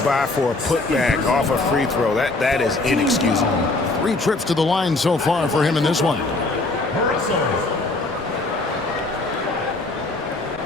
by for a putback off a free throw, that is inexcusable. 3 trips to the line so far for him in this one.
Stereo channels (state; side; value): quieter; right; 3.1 dB